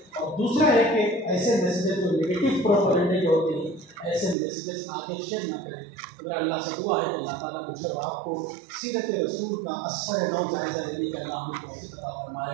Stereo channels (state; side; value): drops out; left; at 4.4 s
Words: اور دوسرا ہے کہ ایسے میسیجز جو نگیٹو پروپیگنڈے کے ہوتے ہیں ایسے میسیجز آگے شیئر نہ کریں. میرا اللہ سے دعا ہے کہ اللہ تعالیٰ مجھے اور آپ کو سیرت رسول کا اثر نو جائزہ لینے کا اللہ ہمیں توفیق عطا